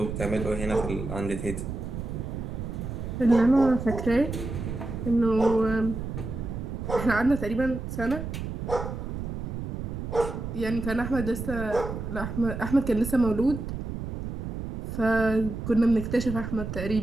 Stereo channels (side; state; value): right; noise; rumble, 5 dB below the sound